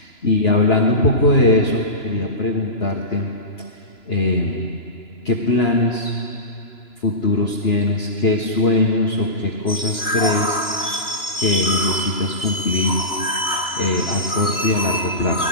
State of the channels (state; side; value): late; right; 2.9 ms